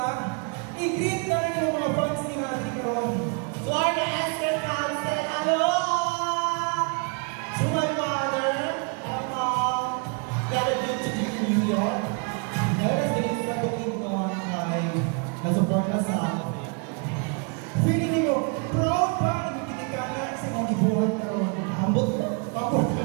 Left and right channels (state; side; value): quieter; left; 34.8 dB